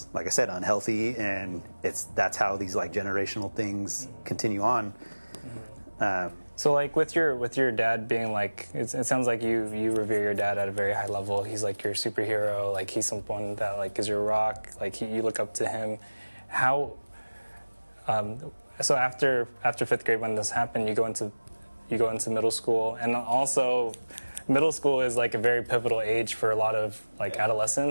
like I said, unhealthy, and that's how these like generational things continue on. So like with your dad being like, it sounds like you revere your dad at a very high level. He's like your superhero. Like he's someone that like is your rock. Like you look up to him. How? So after 5th grade, when this happened, you go into middle school, and also middle school is like a very pivotal age for a lot of like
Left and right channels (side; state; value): both; inverted; correlation -1.00